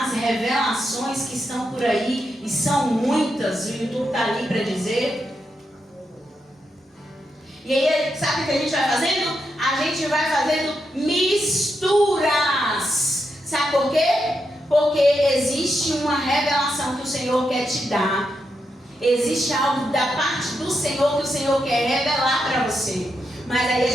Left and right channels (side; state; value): both; normal; correlation 0.84